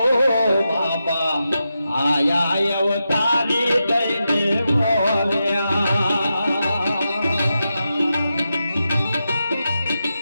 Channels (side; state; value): both; inverted; correlation -0.88